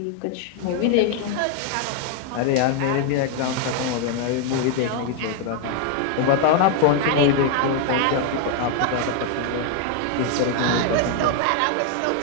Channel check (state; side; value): different; both; correlation 0.00